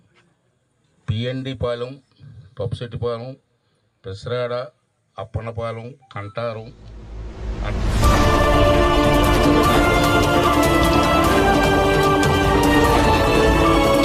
పిఎన్డి పాలెం, పప్పుశెట్టిపాలెం, పెసరాడ, అప్పన్నపాలెం, కంటారం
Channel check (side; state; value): both; identical; correlation 1.00